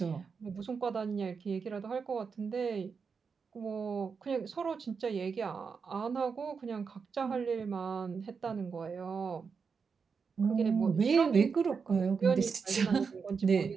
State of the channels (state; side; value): quieter; left; 5.6 dB